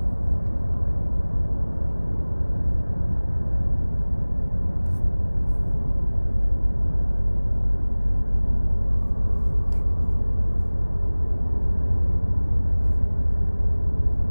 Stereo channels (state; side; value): inverted; both; correlation -1.00